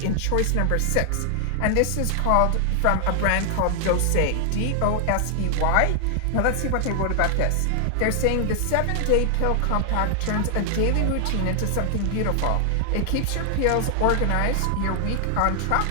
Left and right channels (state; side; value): different; both; correlation 0.00